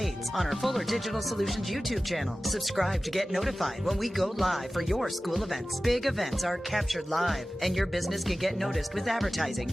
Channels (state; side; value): normal; both; correlation 0.96